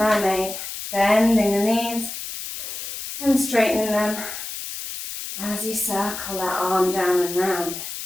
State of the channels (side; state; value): left; noise; hiss, 8 dB below the sound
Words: bending the knees and straightening them as you circle that arm down and round.